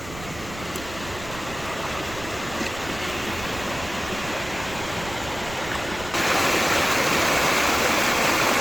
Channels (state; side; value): noise; right; rumble, 14 dB below the sound